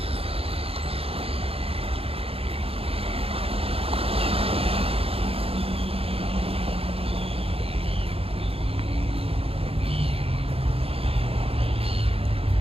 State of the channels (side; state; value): left; late; 0.28 ms